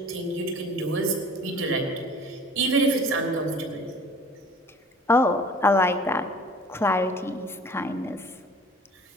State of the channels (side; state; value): both; normal; correlation 0.47